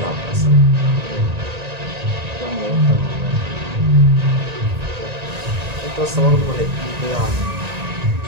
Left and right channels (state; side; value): late; left; 1.8 ms